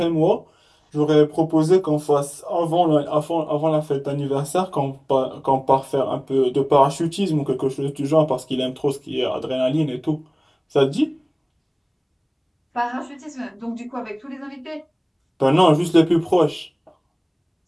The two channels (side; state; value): both; identical; correlation 1.00